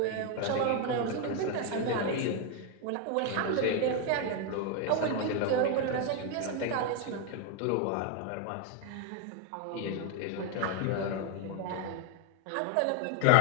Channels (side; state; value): both; different; correlation 0.01